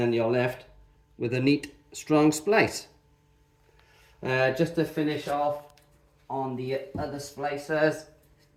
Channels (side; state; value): both; identical; correlation 1.00